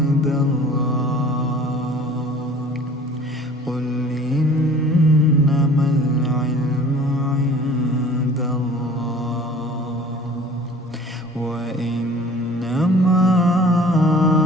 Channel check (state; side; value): normal; both; correlation 0.47